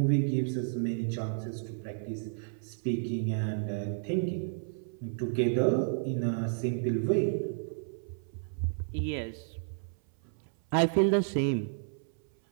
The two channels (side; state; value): left; silent; 57 dB below the other